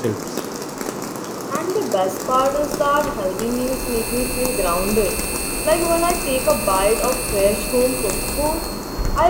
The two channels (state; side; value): identical; both; correlation 1.00